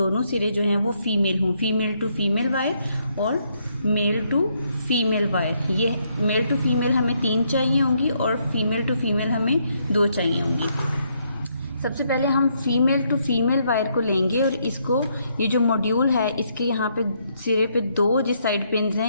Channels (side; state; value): both; inverted; correlation -0.74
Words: सिरे जो हैं वो फीमेल हों, फीमेल टू फीमेल वायर और मेल टू फीमेल वायर। ये मेल टू फीमेल हमें 3 चाहिए होंगी और फीमेल टू फीमेल हमें 2 चाहिए होंगी। सबसे पहले हम फीमेल टू फीमेल वायर को लेंगे और इसको, ये जो मॉड्यूल है इसके यहाँ पे सिरे पे 2 जिस साइड पिन्स